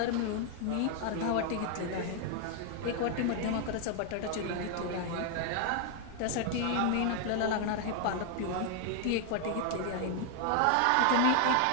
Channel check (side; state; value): both; different; correlation 0.00